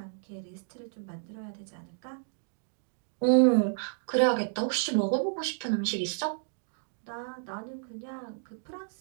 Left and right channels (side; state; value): left; silent; digital silence